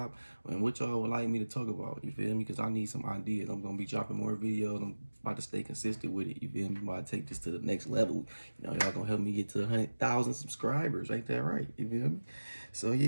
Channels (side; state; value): both; inverted; correlation -1.00